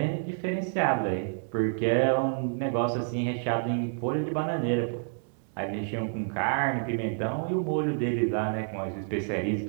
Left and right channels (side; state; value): left; silent; digital silence